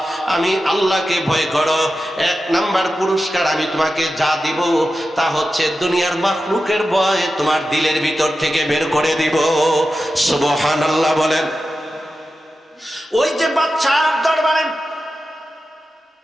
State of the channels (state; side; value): normal; both; correlation 0.92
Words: আমি আল্লাহকে ভয় করো। এক নাম্বার পুরস্কার আমি তোমাকে যা দিব তা হচ্ছে দুনিয়ার মাখলুকের ভয় তোমার দিলের ভিতর থেকে বের করে দিব। সুবহানাল্লাহ বলেন। ওই যে বাচ্চার দরবারে